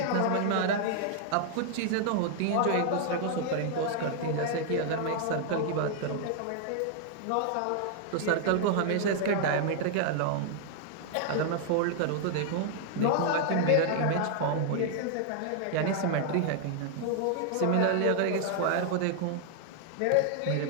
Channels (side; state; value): both; different; correlation 0.00